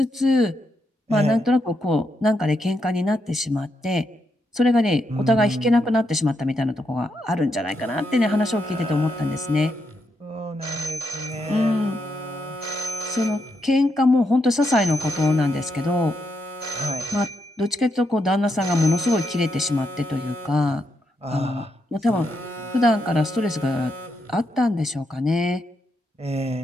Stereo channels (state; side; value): normal; both; correlation 0.81